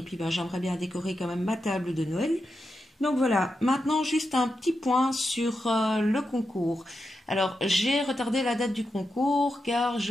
puis, j'aimerais bien décorer quand même ma table de Noël. Donc voilà, maintenant juste un petit point sur le concours. Alors j'ai retardé la date du concours car je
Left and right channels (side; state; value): both; normal; correlation 0.87